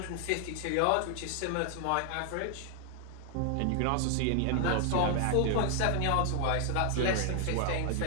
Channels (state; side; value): different; both; correlation 0.00